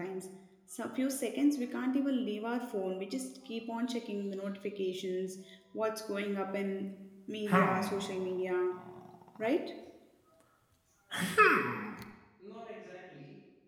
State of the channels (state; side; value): identical; both; correlation 1.00